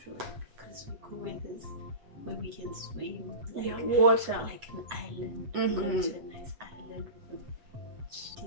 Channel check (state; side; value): late; left; 7.8 ms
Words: would it be? Because we go where we can swim. Like, yeah, water. Like an island. Go to a nice island with a